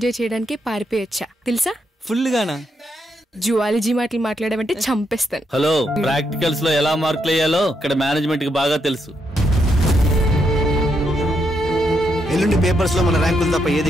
చేయడానికి పారిపోయొచ్చా తెలుసా? ఫుల్గానా? జువాలజీ మాటలు మాట్లాడమంటే చంపేస్తాను. హలో, ప్రాక్టికల్స్ లో ఎలా మార్కులు వేయాలో ఇక్కడ మేనేజ్మెంట్ కి బాగా తెలుసు. ఎల్లుండి పేపర్స్ లో మన ర్యాంకులు తప్ప ఏది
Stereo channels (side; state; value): both; normal; correlation 0.79